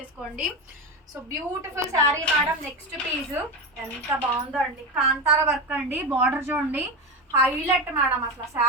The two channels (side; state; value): both; normal; correlation 0.18